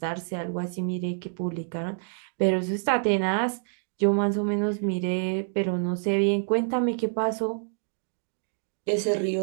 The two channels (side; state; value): left; silent; 60 dB below the other